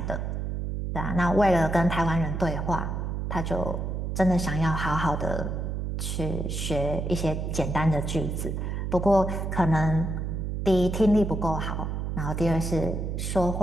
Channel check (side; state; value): right; noise; hum, 3 dB below the sound